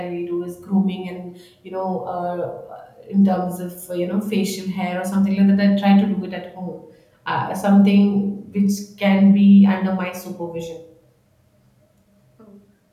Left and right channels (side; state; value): both; identical; correlation 1.00